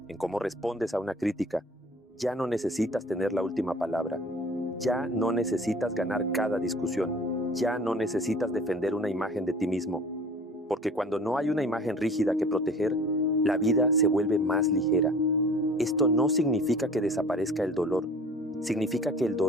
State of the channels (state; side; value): normal; both; correlation 0.46